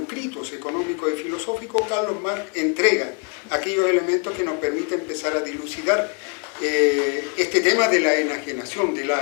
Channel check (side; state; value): right; quieter; 36.7 dB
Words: económicos y filosóficos, Carlos Marx entrega aquellos elementos que nos permiten empezar a dilucidar este tema de la enajenación, de la